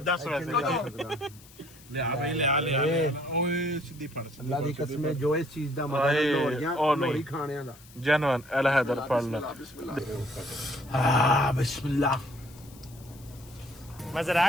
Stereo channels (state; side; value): noise; left; hiss, 23 dB below the sound